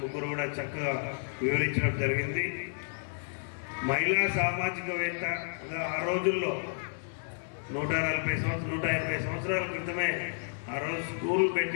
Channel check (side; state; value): right; silent; digital silence